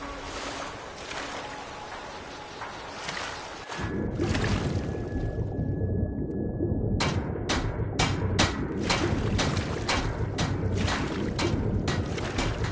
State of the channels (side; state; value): both; identical; correlation 1.00